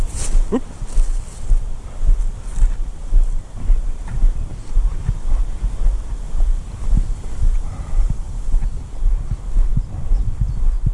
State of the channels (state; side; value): identical; both; correlation 1.00